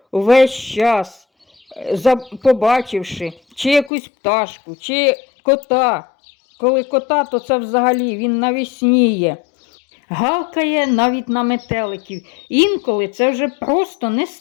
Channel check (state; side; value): drops out; right; at 3.9 s